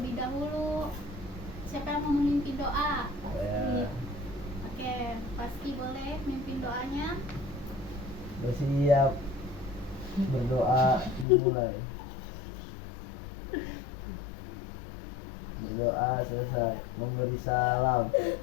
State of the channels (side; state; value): right; drops out; at 11.2 s